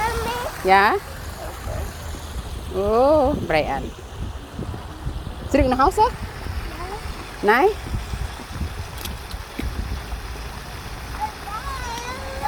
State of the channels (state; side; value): identical; both; correlation 1.00